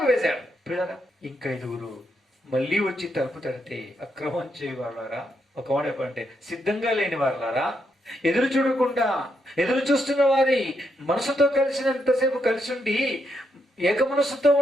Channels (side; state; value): both; normal; correlation 0.79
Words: వేశాడు. పిల్లరా, ఇంకా 5 మళ్ళీ వచ్చి తలుపు తడితే అక్రమం చేయవాళ్ళారా, ఒక మాట చెప్పంటే సిద్ధంగా లేని వారులారా, ఎదురు చూడకుండా ఎదురు చూస్తున్న వారి మనసుతో కలిసినంతసేపు కలిసి ఉండి ఏక మనసుతో